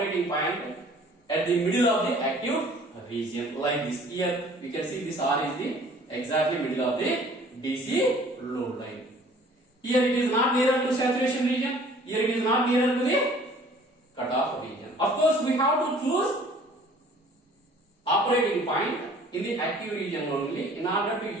point at the middle of the active region, like this. Here we can see this R is the exactly middle of the DC load line. Here it is not nearer to saturation region, here it is not nearer to the cutoff region. Of course we have to choose operating point in the active region only in order to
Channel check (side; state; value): both; normal; correlation 0.52